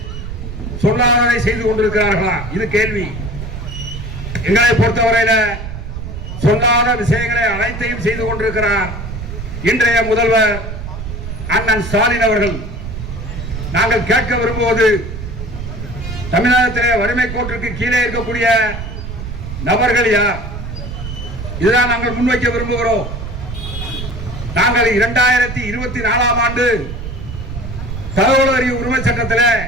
சொல்லாததை செய்து கொண்டிருக்கிறார்களா? இது கேள்வி. எங்களை பொறுத்தவரையில சொல்லாத விஷயங்களை அனைத்தையும் செய்து கொண்டிருக்கிறார் இன்றைய முதல்வர் அண்ணன் ஸ்டாலின் அவர்கள். நாங்கள் கேட்க விரும்புவது, தமிழகத்திலே வறுமை கோட்டிற்கு கீழே இருக்கக்கூடிய நபர்கள் யார்? இதுதான் நாங்கள் முன்வைக்க விரும்புகிறோம். நாங்கள் 2024ஆம் ஆண்டு தகவல் அறிவு உரிமை சட்டத்தில்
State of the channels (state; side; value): noise; right; rumble, 8 dB below the sound